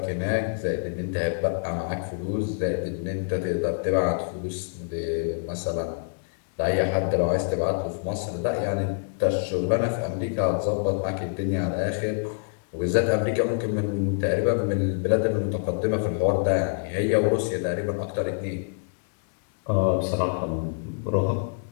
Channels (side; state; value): right; silent; digital silence